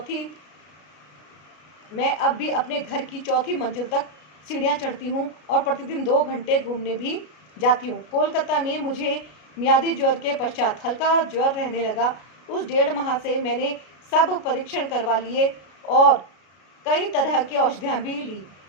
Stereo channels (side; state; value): right; late; 33 ms